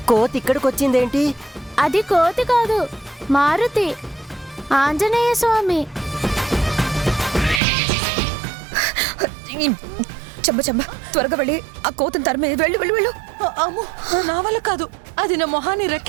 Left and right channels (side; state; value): left; drops out; at 7.6 s